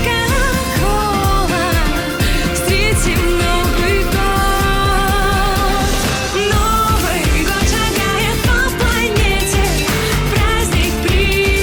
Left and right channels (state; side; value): identical; both; correlation 1.00